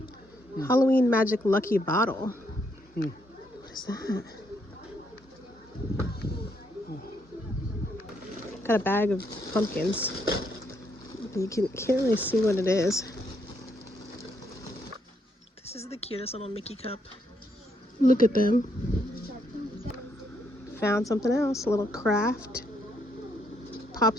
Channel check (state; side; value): normal; both; correlation 0.74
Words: Halloween Magic Lucky Bottle. What is that? Got a bag of pumpkins. You can't really see what it is. This is the cutest little Mickey cup. Look at them. Found something else. A little craft.